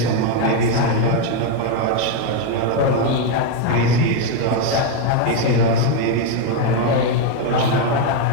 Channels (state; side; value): different; both; correlation 0.01